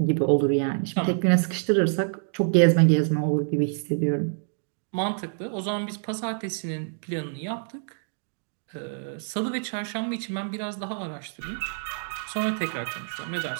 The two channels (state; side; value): silent; left; digital silence